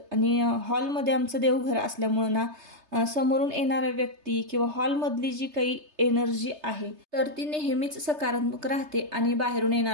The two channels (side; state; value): left; late; 3.3 ms